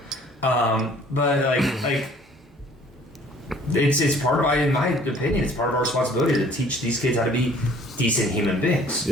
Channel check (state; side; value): normal; both; correlation 0.54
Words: But like it's part of, in my opinion, it's part of our responsibility to teach these kids how to be decent human beings.